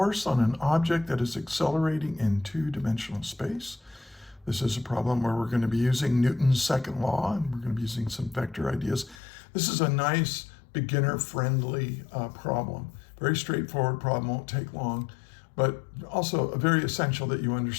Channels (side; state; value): right; drops out; at 9.2 s